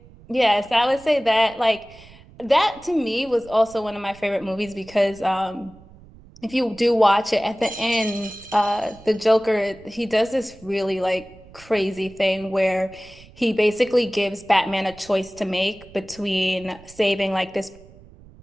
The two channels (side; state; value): right; noise; rumble, 23 dB below the sound